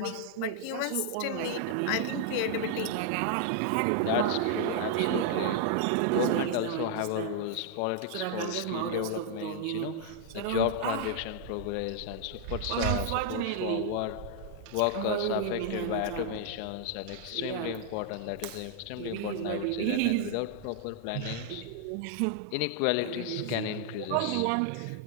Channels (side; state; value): both; different; correlation 0.00